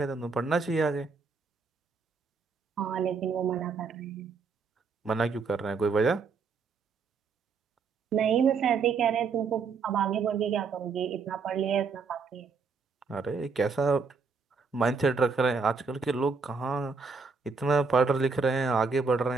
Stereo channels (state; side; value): quieter; left; 5.0 dB